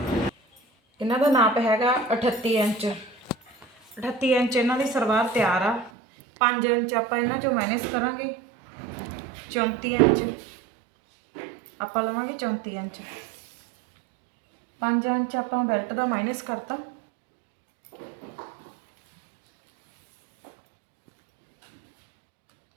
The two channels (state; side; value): drops out; left; at 5.9 s